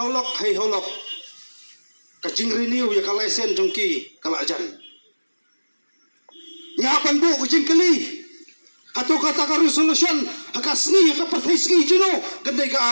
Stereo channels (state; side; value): inverted; both; correlation -1.00